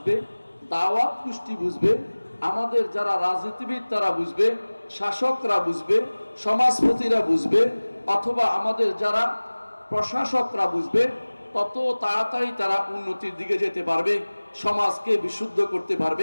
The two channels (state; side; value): inverted; both; correlation -1.00